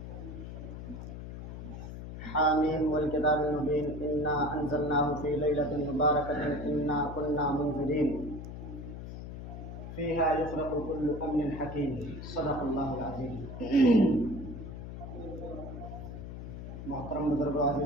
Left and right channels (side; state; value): left; noise; hum, 9 dB below the sound